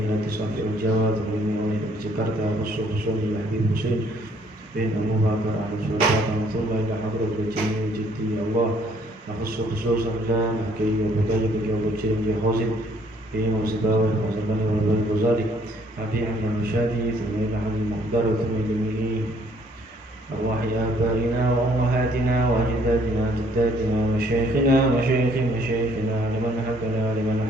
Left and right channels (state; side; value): normal; both; correlation 0.63